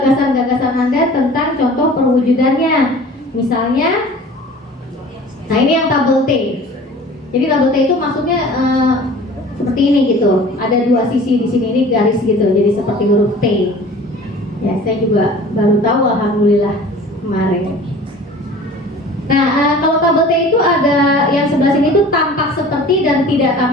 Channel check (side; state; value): both; normal; correlation 0.44